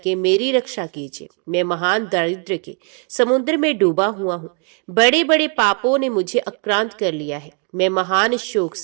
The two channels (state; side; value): quieter; left; 38.8 dB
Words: मेरी रक्षा कीजिए। मैं महान दारिद्र्य के समुद्र में डूबा हुआ हूँ। बड़े बड़े पापों ने मुझे आक्रांत कर लिया है। मैं महान शोक